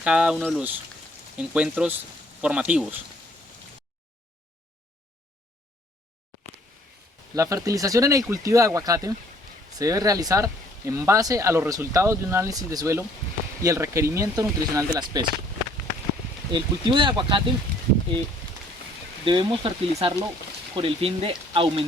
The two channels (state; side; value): normal; both; correlation 0.60